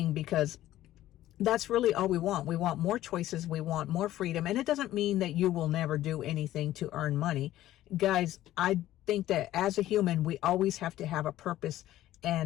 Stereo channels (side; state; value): right; quieter; 14.1 dB